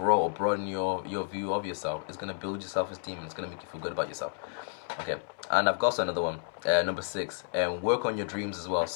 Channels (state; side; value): silent; right; 57 dB below the other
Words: or broaden your view of yourself, it's going to build your self-esteem, and it's going to make you feel good about yourself. Okay, and I've got also another one, number 6, work on your dreams as well.